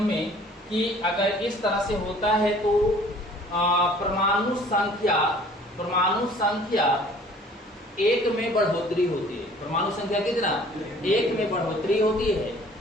में कि अगर इस तरह से होता है तो परमाणु संख्या 1 में बढ़ोतरी होती है। परमाणु संख्या कितना? 1 में बढ़ोतरी होती है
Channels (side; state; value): both; normal; correlation 0.52